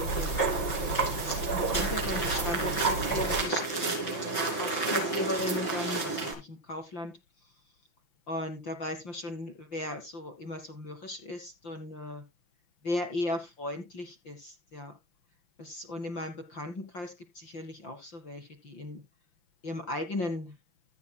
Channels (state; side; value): late; right; 6.0 ms